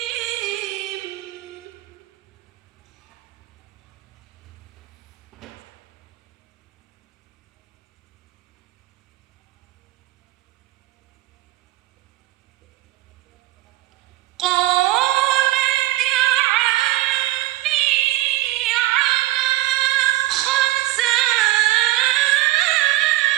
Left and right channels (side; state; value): left; quieter; 16.7 dB